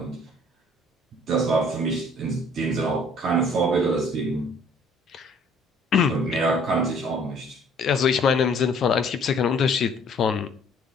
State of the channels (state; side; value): normal; both; correlation 0.57